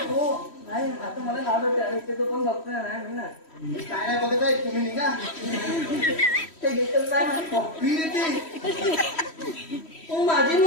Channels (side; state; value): right; late; 3.1 ms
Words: हो नाही आता मला नाव होते आणि इथे तो पण डॉक्टर नाही मी ना मी काय नाही बघत आहे तुम्ही निघा ते घेतच नाही कॉफी देते हो माझी